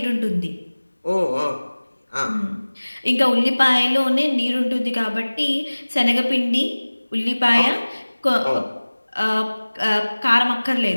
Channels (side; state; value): both; inverted; correlation -1.00